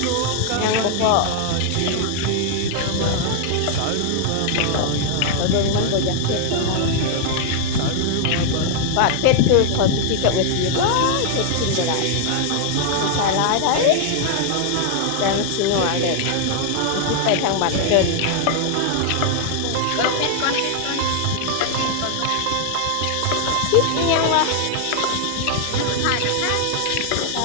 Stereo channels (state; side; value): different; both; correlation 0.00